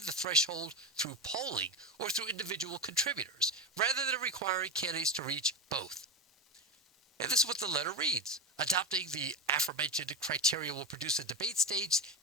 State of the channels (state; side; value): normal; both; correlation 0.17